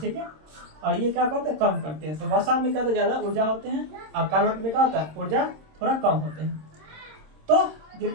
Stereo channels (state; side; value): late; left; 26 ms